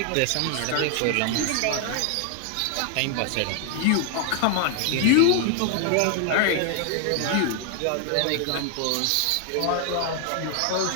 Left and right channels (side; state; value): both; different; correlation 0.00